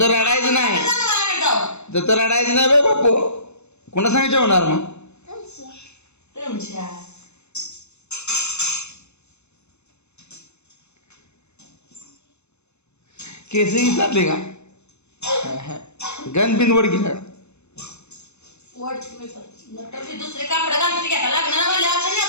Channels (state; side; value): late; right; 0.81 ms